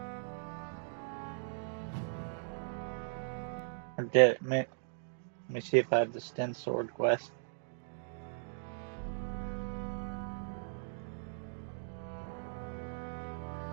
Let me see if I have the Sten Sword quest.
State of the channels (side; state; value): left; silent; digital silence